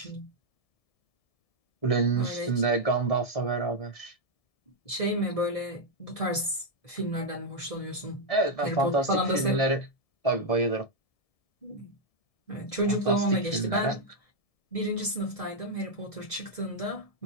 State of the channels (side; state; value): right; late; 1.7 ms